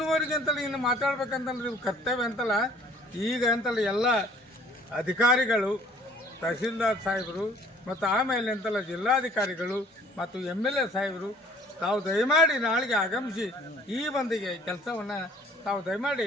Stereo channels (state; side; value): normal; both; correlation 0.55